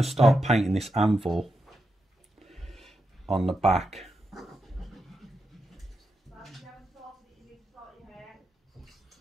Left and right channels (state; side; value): normal; both; correlation 0.86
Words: to start painting this anvil on the back.